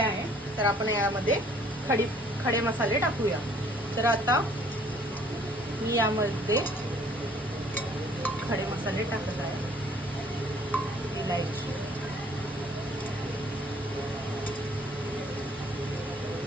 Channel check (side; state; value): both; normal; correlation 0.58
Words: तर आपण यामध्ये खडे मसाले टाकूया. तर आता मी यामध्ये खडे मसाले टाकत आहे. इलायची,